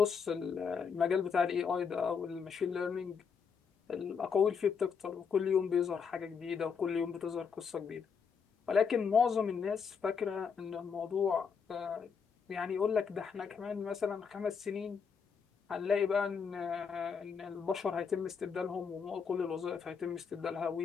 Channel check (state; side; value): quieter; right; 6.2 dB